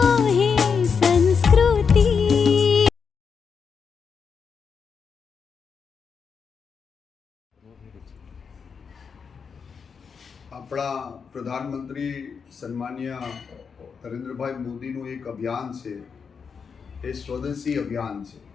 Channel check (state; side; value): quieter; right; 6.0 dB